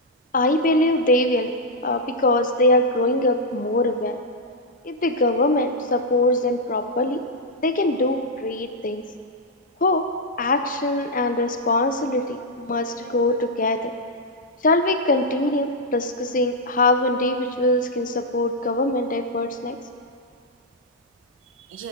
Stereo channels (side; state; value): both; normal; correlation -0.04